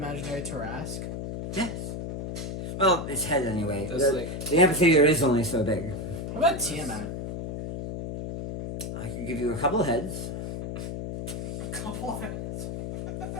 Tarrasque. Yes. Well, its head anyway. That's The amphitheater is only so big. How about Tiamat? I could give you a couple of heads. A couple of it.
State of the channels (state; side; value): noise; left; hum, 5 dB below the sound